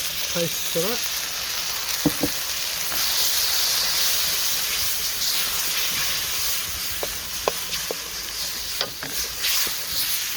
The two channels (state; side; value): identical; both; correlation 1.00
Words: paste to that.